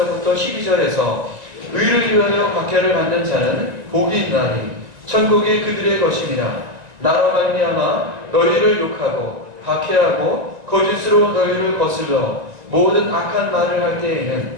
12절에서 의를 위하여 박해를 받는 자는 복이 있나니 천국이 그들의 것이니라. 나로 말미암아 너희를 욕하고 박해하고 거짓으로 너희를 거슬러 모든 악한 말을 할 때에는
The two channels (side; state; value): left; late; 1.9 ms